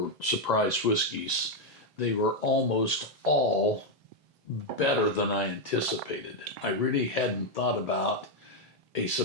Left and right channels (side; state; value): both; normal; correlation 0.02